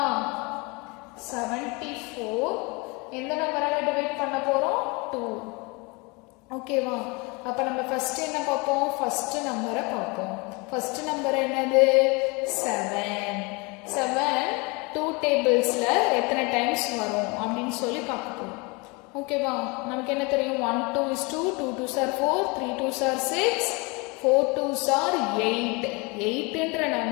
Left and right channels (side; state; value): right; quieter; 27.8 dB